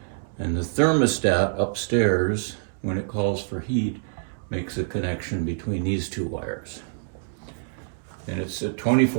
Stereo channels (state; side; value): silent; left; 61 dB below the other